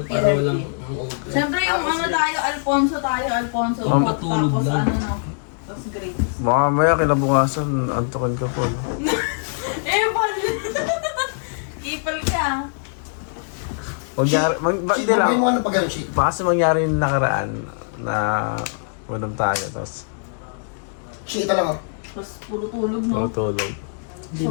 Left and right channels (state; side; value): silent; right; digital silence